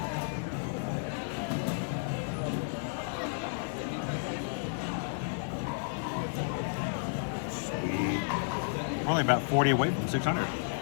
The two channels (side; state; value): right; silent; 56 dB below the other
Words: Sweet. We're only about 40 away from 600.